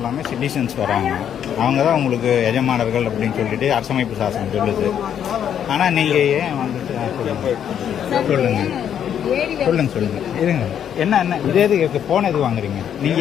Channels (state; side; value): quieter; right; 9.2 dB